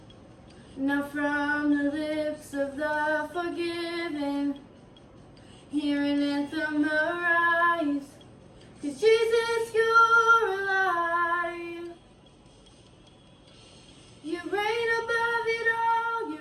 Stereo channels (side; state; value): both; identical; correlation 1.00